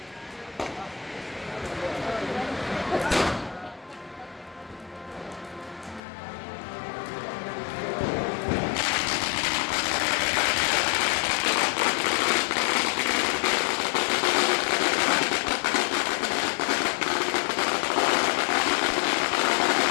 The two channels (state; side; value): drops out; right; at 6.0 s